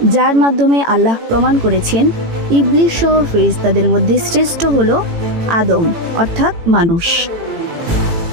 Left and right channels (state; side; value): late; left; 18 ms